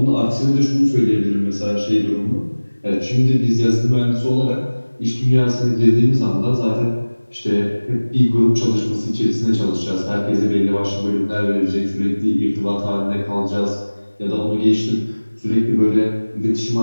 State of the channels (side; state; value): both; inverted; correlation -1.00